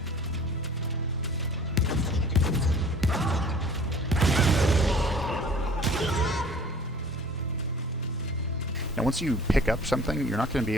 Now once you pick up something, you're not going to be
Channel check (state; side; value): normal; both; correlation 0.48